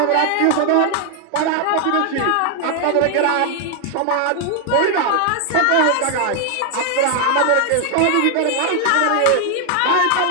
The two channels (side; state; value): both; different; correlation 0.00